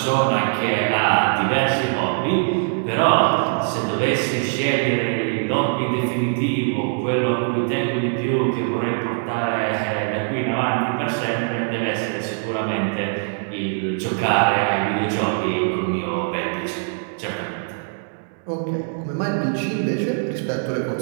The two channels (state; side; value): silent; left; digital silence